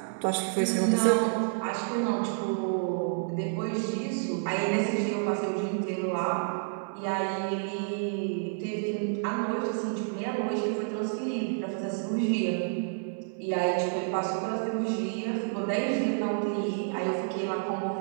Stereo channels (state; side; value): silent; left; 58 dB below the other